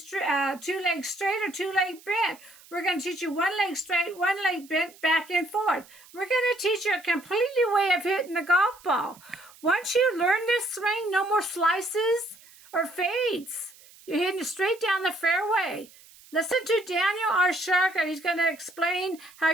straight or two legs bent. We're going to teach you one leg straight, one leg bent, back and forth. We're going to teach you a completely way of hitting the golf ball. Once you learn this swing, no more slices or fades. You're hitting straight down the fairway. Listen to Daniel R. Shugart. He's going to explain how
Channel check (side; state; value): right; noise; hiss, 24 dB below the sound